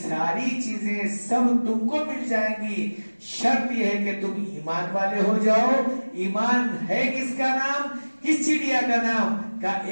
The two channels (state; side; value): inverted; both; correlation -1.00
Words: چیزیں سب تم کو مل جائیں گی. شرط یہ ہے کہ تم ایمان والے ہو جاؤ. ایمان ہے کس کا نام؟ کس چڑیا کا نام؟ کا